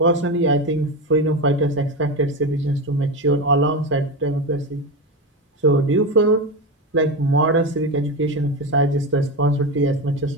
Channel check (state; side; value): normal; both; correlation 0.18